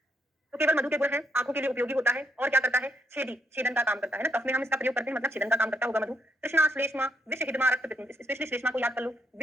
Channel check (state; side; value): normal; both; correlation 0.76